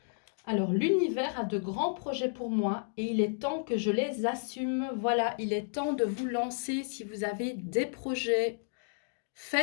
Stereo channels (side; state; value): right; silent; digital silence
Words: Alors, l'univers a de grands projets pour moi et il est temps que je les assume. Voilà, il est temps de vous lancer si vous avez des projets.